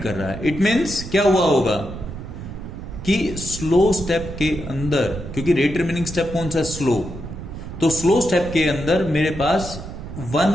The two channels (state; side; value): noise; right; rumble, 10 dB below the sound